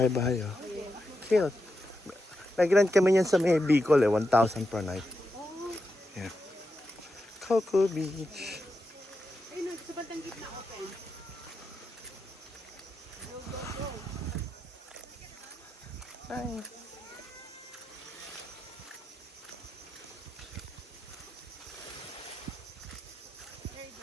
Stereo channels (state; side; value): normal; both; correlation 0.87